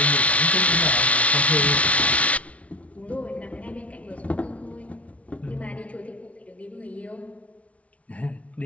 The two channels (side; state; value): right; late; 0.065 ms